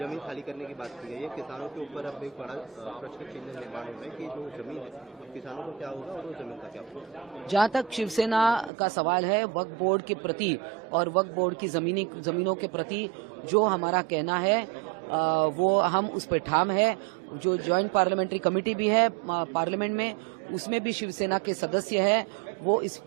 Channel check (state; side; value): drops out; left; at 8.7 s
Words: खाली करने की बात की गई है। किसानों के ऊपर अब एक बड़ा प्रश्न चिन्ह निर्माण हो रहा है कि जो जमीन है किसानों को क्या होगा और वो जमीन का क्या होगा। जहाँ तक शिवसेना का सवाल है वक्फ बोर्ड के प्रति और वक्फ बोर्ड की जमीनों के प्रति जो हमारा कहना है वो हम उस पर ठाम है। जो ज्वाइंट पार्लियामेंट्री कमेटी भी है पार्लियामेंट में, उसमें भी शिवसेना के सदस्य है, वो